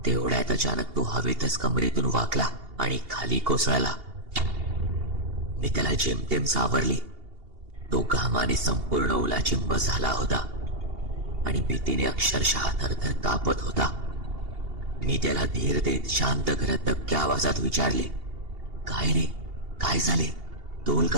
तेवढ्यात अचानक तो हवेतच कमरेतून वाकला आणि खाली कोसळला. मी त्याला जेमतेम सावरली. तो घामाने संपूर्ण ओलाचिंब झाला होता आणि भीतीने अक्षरशः थरथर कापत होता. मी त्याला धीर देत शांत करत दबक्या आवाजात विचारले, काय रे, काय झाले, तोल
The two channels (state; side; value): late; left; 2.8 ms